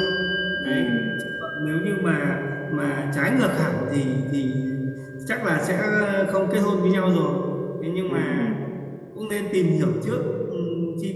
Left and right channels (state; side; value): identical; both; correlation 1.00